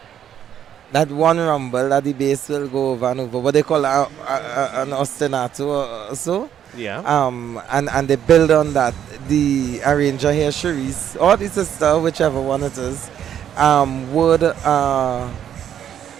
That one rumble that the bass will go over and over, what they call an ostinato or so. Yeah. And they build on that. The arranger here, Cherise, or the sister, whichever one it is, would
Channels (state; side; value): quieter; left; 9.8 dB